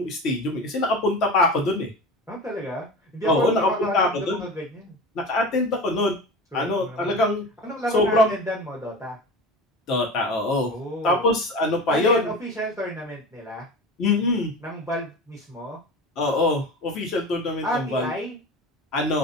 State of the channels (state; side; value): normal; both; correlation 0.31